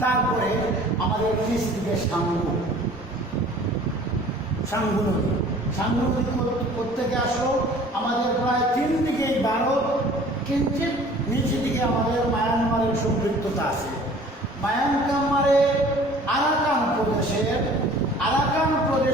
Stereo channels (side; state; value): both; normal; correlation 0.49